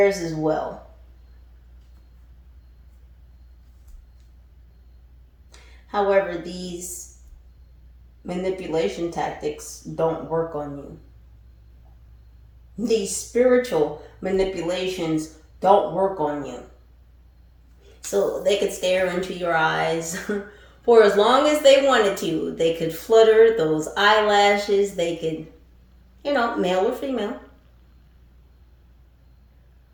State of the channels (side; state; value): both; identical; correlation 1.00